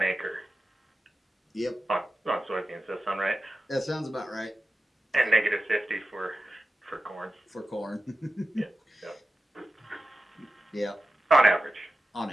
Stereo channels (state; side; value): normal; both; correlation 0.93